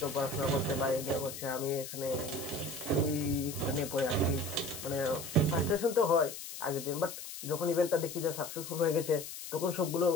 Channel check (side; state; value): left; noise; hiss, 10 dB below the sound